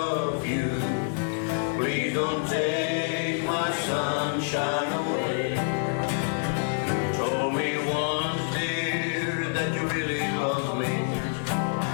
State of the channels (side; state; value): right; silent; 60 dB below the other